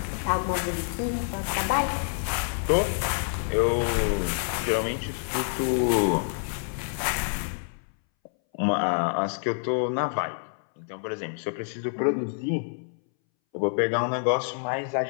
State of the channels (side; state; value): right; silent; 60 dB below the other